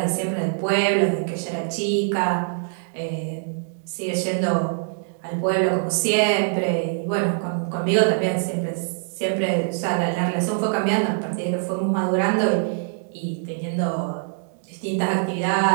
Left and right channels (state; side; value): silent; left; digital silence